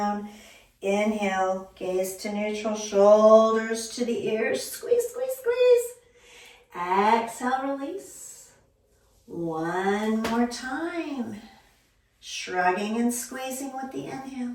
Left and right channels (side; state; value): both; identical; correlation 1.00